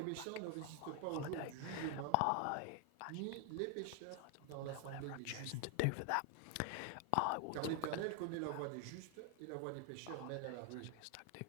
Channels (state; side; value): different; both; correlation 0.00